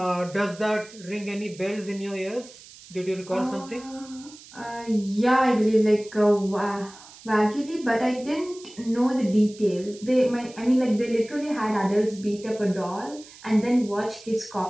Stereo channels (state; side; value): noise; right; hiss, 20 dB below the sound